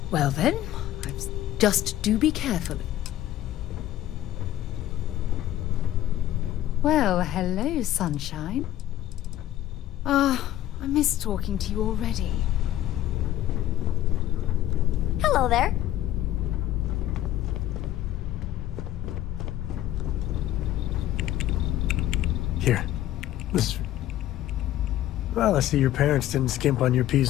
Well then, just do be careful. Well, hello, sunshine. I miss talking to you already. Hello there. Here. This... Well, I see your parents didn't skimp on your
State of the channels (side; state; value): right; quieter; 13.2 dB